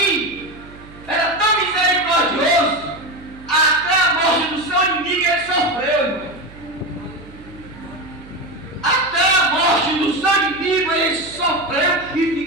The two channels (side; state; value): right; noise; hum, 20 dB below the sound